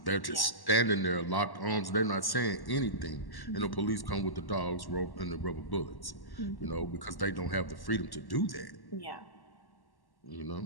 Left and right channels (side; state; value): right; late; 1.1 ms